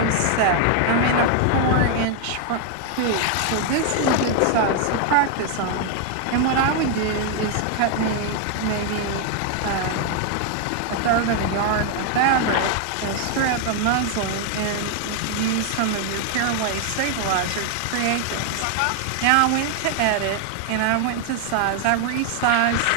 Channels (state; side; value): different; both; correlation 0.00